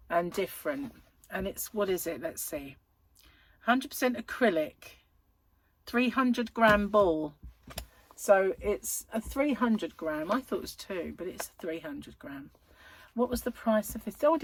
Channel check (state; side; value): identical; both; correlation 1.00